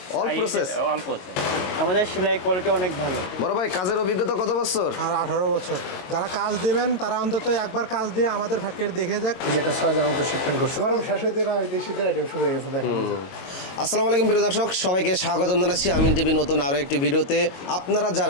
অল প্রসেস। আমাদের সেলাই কোয়ালিটি অনেক ভালো। বড় ভাই কাজের অভিজ্ঞতা কত বছর? আর 18 বছর। যারা কাজ দিবেন তারা অন্তত একবার কাজ দিয়ে আমাদের ফ্যাক্টরি দেখে যাক। যেটা 6000 মতো শিপমেন্ট করছে, গরম শেষ হইতে না হইতে শীতের আইটেম শুরু হয়ে গেছে। দেখেন। আসসালামু আলাইকুম প্রিয় দর্শক, সবাইকে স্বাগতম জানাচ্ছি আমিন টিভি নতুন আরও একটি ভিডিওতে। আপনারা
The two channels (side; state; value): right; late; 22 ms